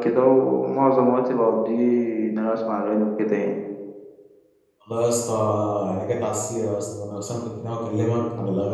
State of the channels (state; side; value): identical; both; correlation 1.00